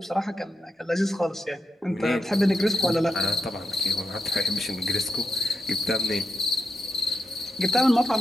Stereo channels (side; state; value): both; normal; correlation 0.86